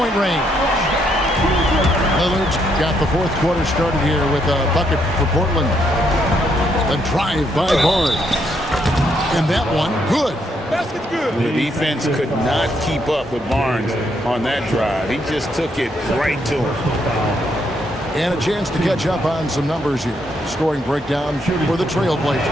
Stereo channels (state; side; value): normal; both; correlation 0.75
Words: range. Lillard's got the fourth quarter started here with a bucket for Portland. A drive by Barnes. And that one, good. Basket's good. The defense could not keep up with Barnes on that drive. He just took it right to him. And a chance to catch up on some numbers here. Scoring breakdown for the TrailBlazers.